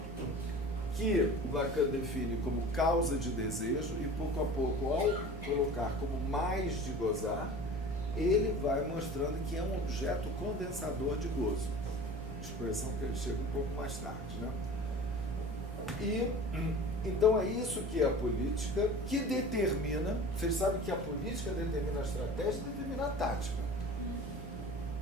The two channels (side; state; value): both; normal; correlation 0.39